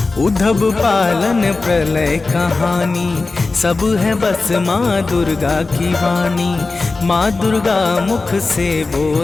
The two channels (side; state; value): right; quieter; 3.7 dB